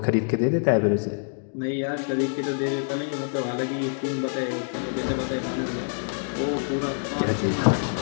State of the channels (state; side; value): silent; right; digital silence